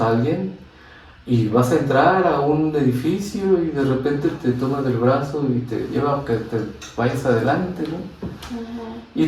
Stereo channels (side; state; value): both; identical; correlation 1.00